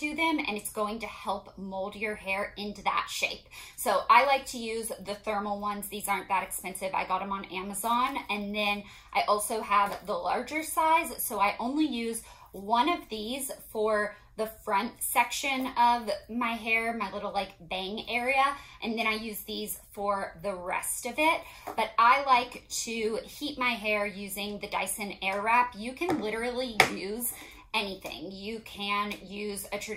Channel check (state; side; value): identical; both; correlation 1.00